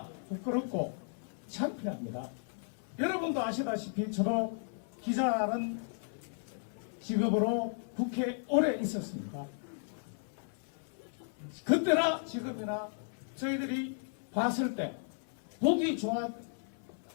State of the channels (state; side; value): silent; right; 54 dB below the other